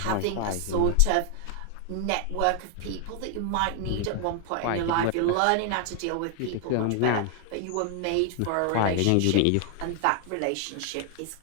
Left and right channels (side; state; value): both; different; correlation 0.00